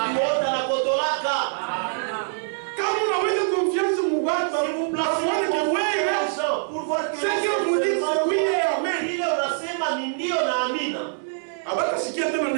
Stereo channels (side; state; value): left; silent; 62 dB below the other